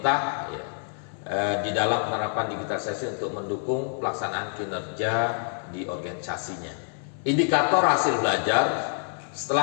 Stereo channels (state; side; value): silent; right; 60 dB below the other